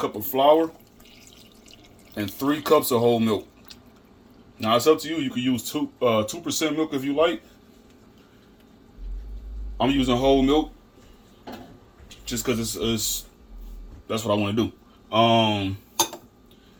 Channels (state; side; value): identical; both; correlation 1.00